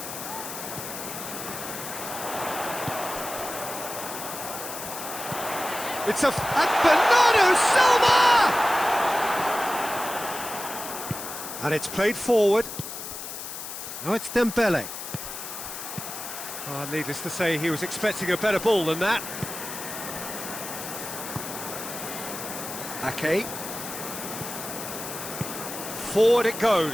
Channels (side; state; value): left; noise; hiss, 8 dB below the sound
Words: It's and Bernardo Silva! And it's played forward. Now it's Dembele. Needless to say, he was expecting a better ball than that. Ake. Forward it